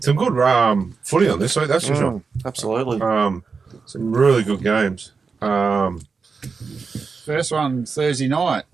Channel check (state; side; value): quieter; left; 4.9 dB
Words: good footy on this week, that's for sure. absolutely. Some really good games. First one, Thursday night.